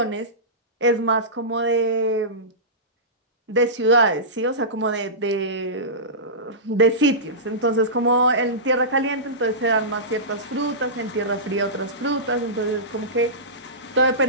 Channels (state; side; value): normal; both; correlation -0.19